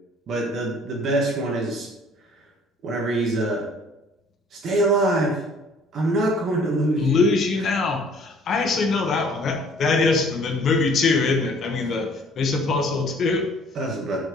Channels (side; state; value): both; normal; correlation 0.55